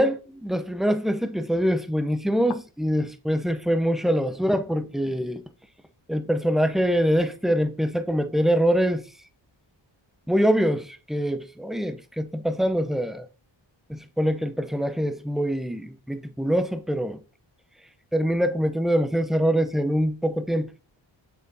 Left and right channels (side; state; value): both; normal; correlation 0.90